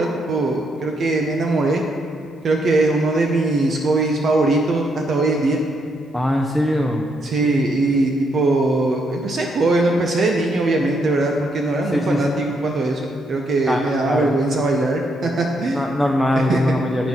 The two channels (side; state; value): both; normal; correlation 0.76